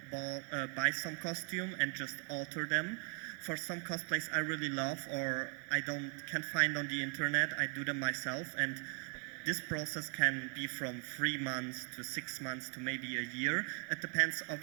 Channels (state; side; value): quieter; left; 32.7 dB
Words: buy some costume and just alter them. For some cosplays I really love or can't find on the internet, I do them myself, and this process can be from 3 months to 6 months to maybe a year. It depends